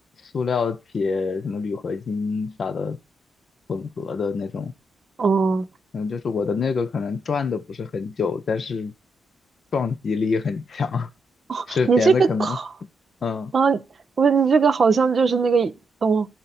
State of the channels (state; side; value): normal; both; correlation 0.80